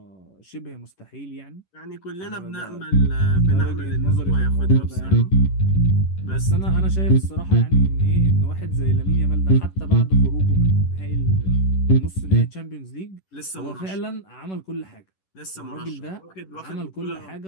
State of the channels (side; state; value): right; late; 11 ms